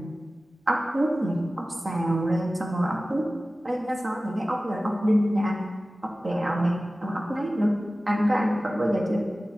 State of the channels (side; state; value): both; normal; correlation 0.96